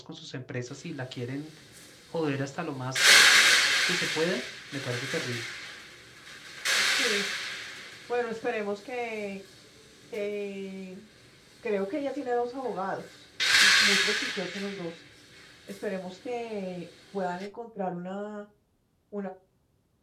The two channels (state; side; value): identical; both; correlation 1.00